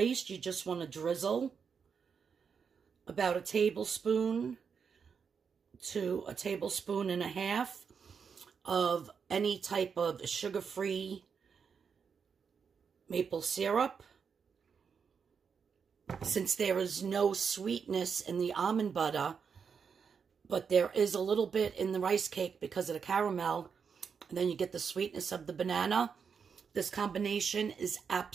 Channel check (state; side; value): quieter; left; 6.3 dB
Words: you just want to drizzle about 1 tablespoon to 1.5 tablespoons of any type of sugar-free maple syrup. Since there is no sweetness in the almond butter, but there is a little bit in the rice cake because of the caramel, and then you get the sweetness of the banana, this combination is